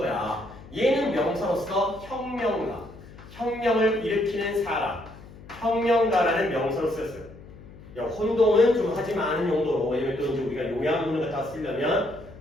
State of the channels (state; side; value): noise; left; hum, 19 dB below the sound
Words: 얘는 명사로서 혁명가. 혁명을 일으키는 사람, 혁명가라는 명사로 쓰였어요. 혼동은 좀 하지 않은 용도로, 왜냐면 또 이제 우리가 요양문을 갖다 쓰려면